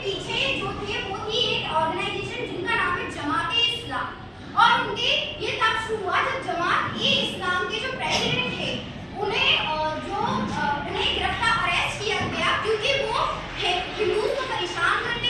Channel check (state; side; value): identical; both; correlation 1.00